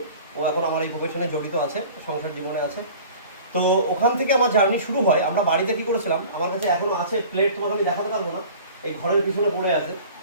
ও এখন আমার এই প্রফেশনে জড়িত আছে, সংসার জীবনে আছে। তো ওখান থেকে আমার জার্নি শুরু হয়। আমরা বাড়িতে কি করেছিলাম, আমার কাছে এখনো আছে প্লেট, তোমাকে আমি দেখাতে পারবো না, এই ঘরের পিছনে পড়ে আছে।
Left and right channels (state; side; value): inverted; both; correlation -0.43